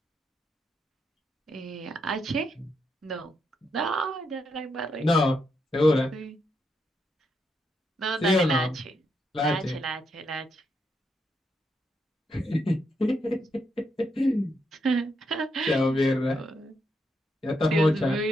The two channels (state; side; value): normal; both; correlation 0.80